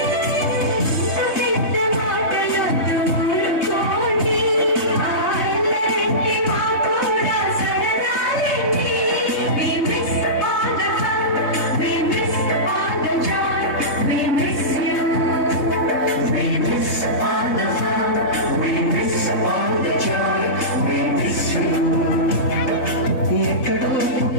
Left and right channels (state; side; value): late; right; 3.6 ms